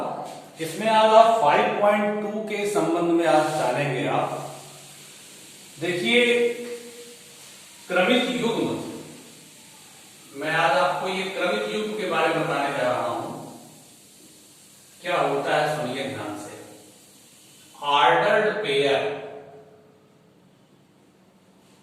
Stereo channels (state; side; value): identical; both; correlation 1.00